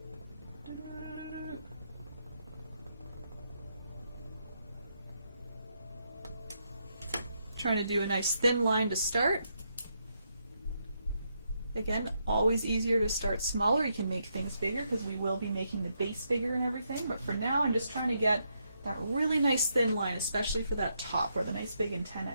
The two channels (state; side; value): inverted; both; correlation -0.79